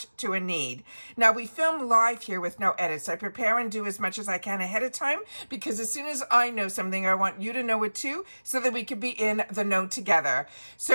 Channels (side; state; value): both; inverted; correlation -1.00